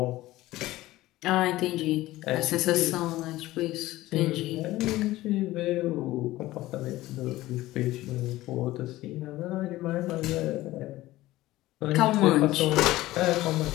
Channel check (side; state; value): right; quieter; 17.0 dB